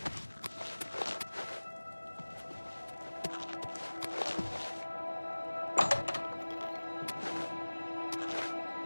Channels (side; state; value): both; inverted; correlation -1.00